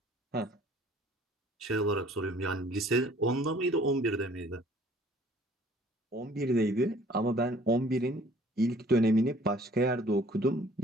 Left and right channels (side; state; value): both; normal; correlation 0.55